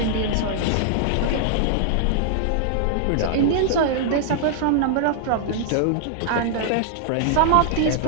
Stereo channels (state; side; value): different; both; correlation -0.01